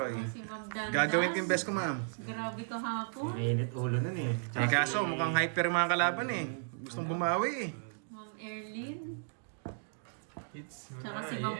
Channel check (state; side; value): silent; left; digital silence